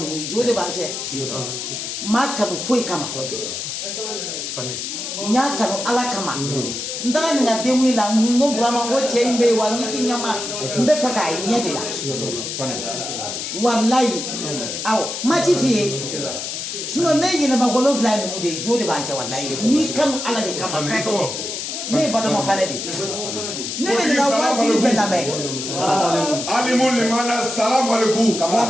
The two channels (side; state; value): left; noise; hiss, 5 dB below the sound